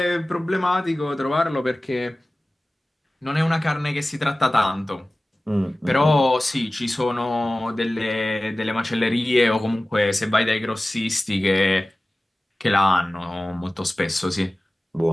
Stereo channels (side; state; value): both; normal; correlation 0.97